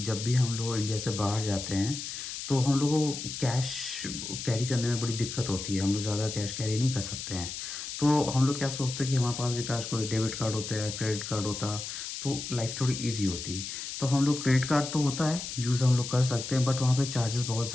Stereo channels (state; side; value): noise; left; hiss, 7 dB below the sound